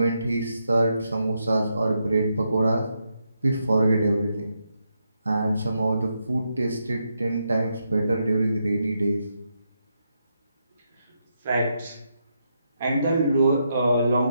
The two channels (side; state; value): both; inverted; correlation -0.82